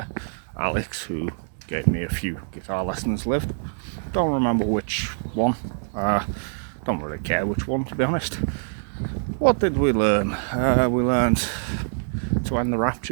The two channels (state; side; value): silent; left; digital silence